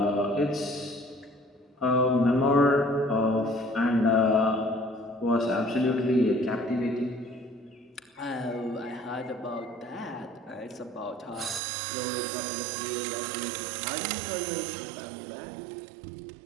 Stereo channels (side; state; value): left; drops out; at 11.6 s